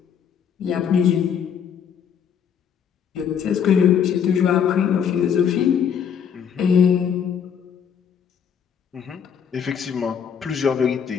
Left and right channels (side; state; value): right; quieter; 7.7 dB